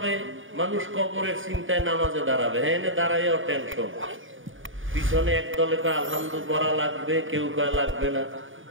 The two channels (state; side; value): late; left; 0.57 ms